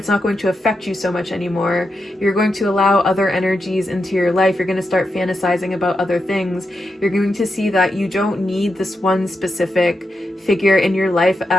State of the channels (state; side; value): normal; both; correlation 0.86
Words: not going to affect you so much anymore. You're going to allow other energies into your life. You're going to start fantasizing about other things. You're going to see that you don't need this one specific figure in your life